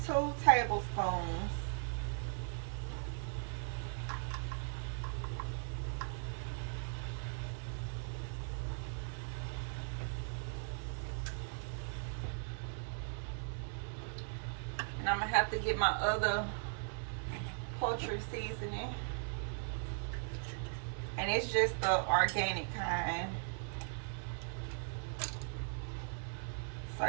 2 tablespoons. And I'm gonna have to get my other poultry seasoning. And it's just the organic kind. So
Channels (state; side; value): silent; left; digital silence